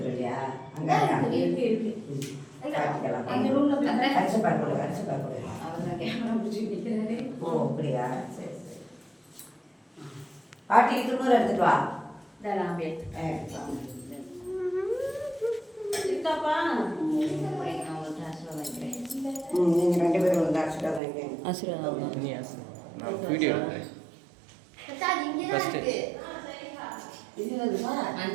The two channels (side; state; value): left; drops out; at 21.0 s